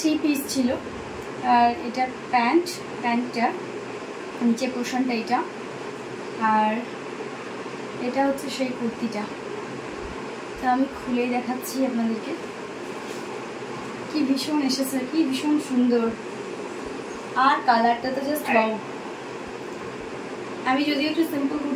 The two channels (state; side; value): identical; both; correlation 1.00